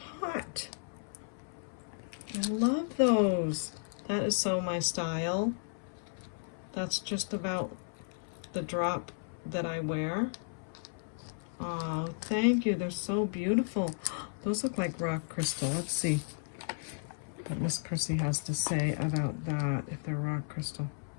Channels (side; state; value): right; silent; 55 dB below the other